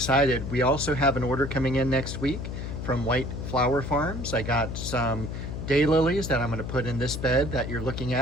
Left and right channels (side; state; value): left; noise; hum, 6 dB below the sound